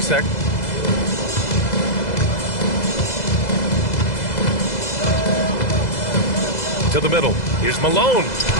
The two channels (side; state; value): right; late; 2.0 ms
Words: To the middle. Here's Malone.